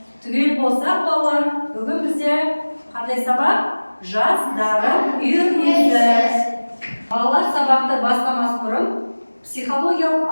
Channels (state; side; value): inverted; both; correlation -1.00